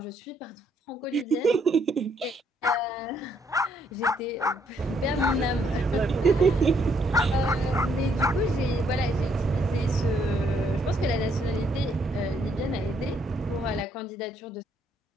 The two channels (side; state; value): both; normal; correlation 0.71